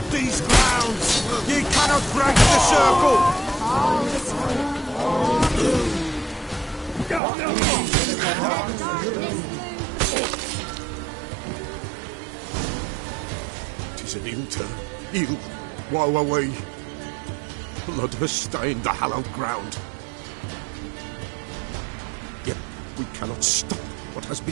these grounds! Ye cannot break the circle! Tis an ill turn. Ill. Woe away. Blood has stained the hallowed ground. Yet we cannot stop what has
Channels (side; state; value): left; drops out; at 7.2 s